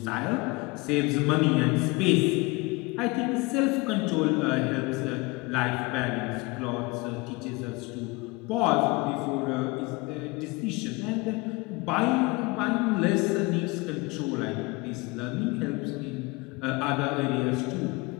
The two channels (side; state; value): right; quieter; 25.3 dB